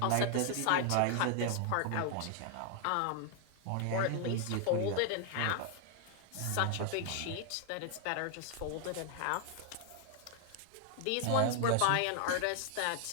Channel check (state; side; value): different; both; correlation 0.00